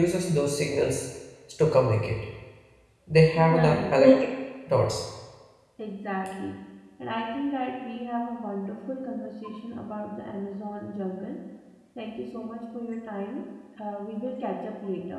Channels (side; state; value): both; identical; correlation 1.00